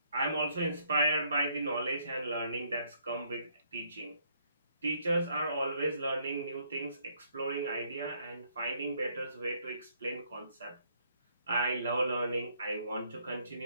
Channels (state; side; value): inverted; both; correlation -0.69